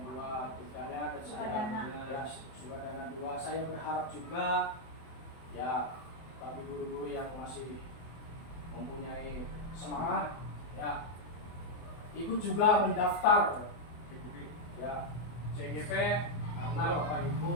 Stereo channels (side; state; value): right; late; 24 ms